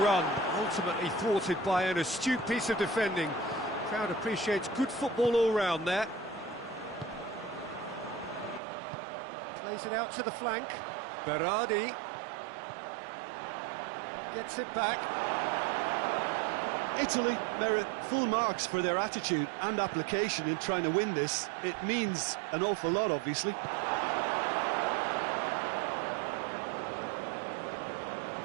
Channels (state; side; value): drops out; left; at 8.6 s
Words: run, ultimately thwarted by an astute piece of defending. Crowd appreciates good football all round there. Plays it out to the flank. Berardi gets it back. Italy merit full marks for their attitude and application in trying to win this. It means an awful lot, obviously.